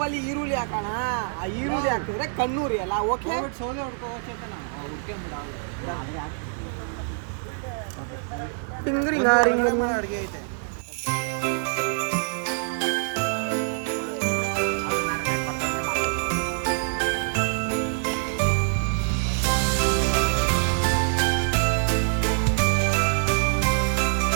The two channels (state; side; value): silent; left; digital silence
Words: ಈರುಳ್ಳಿ ಹಾಕೋಣ. ಆ ಈರುಳ್ಳಿ ಹಾಕಿದ್ರೆ ಕಣ್ಣೂರಿ ಅಲ್ಲ. ಓಕೆ, ಸೋಲೆ ಹೊಡ್ಕೋವಚ್ಚ ಅಂತ ನಾವು ಹುಡ್ಕೊಂಬಿಡ ಅಡುಗೆ ಐತೆ.